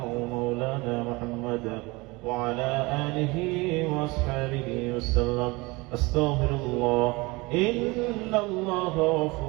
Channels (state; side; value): quieter; left; 24.2 dB